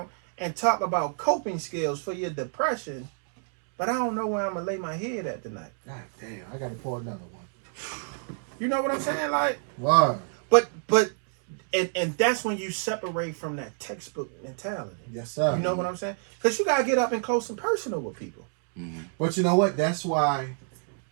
and talk about coping skills for your depression, but I don't know where I'm gonna lay my head at tonight? God damn, I gotta pour another one. You know what I'm saying? Like, wow. But and that's when you separate from that textbook mentality. Yes, sir. You know what I'm saying? Because you gotta get up and close and personal with people. But you know what? That's why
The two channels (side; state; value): left; silent; 59 dB below the other